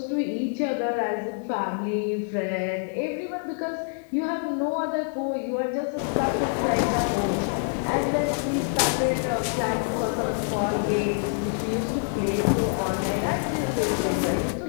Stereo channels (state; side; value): silent; right; 61 dB below the other